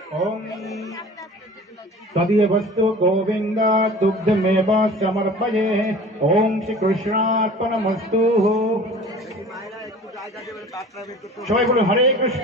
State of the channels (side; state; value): both; normal; correlation 0.42